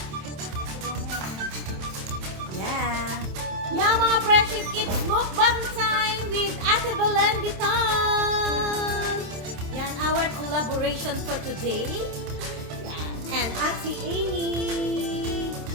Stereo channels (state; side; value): late; left; 27 ms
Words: Yeah. Yeah, mga friendship, it's mukbang time with Ate Maria.Divina. Yan, our collaboration for today. Yan. And Ate Amy.